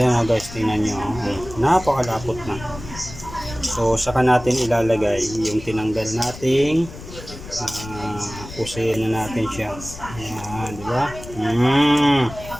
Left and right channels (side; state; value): left; noise; rumble, 14 dB below the sound